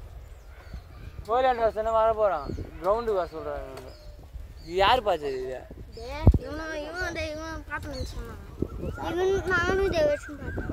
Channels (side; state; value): both; identical; correlation 1.00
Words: கோயிலாண்டு வருஷம் வர போகிறான் கிரவுண்டுக்கு வர சொல்கிறாங்க. இது யார் பார்த்தது இது? இவன் பார்த்து சொன்னான். நானும் தேவேஷும்